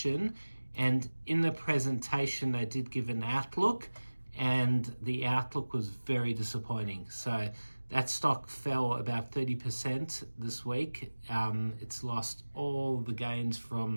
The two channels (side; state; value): both; inverted; correlation -1.00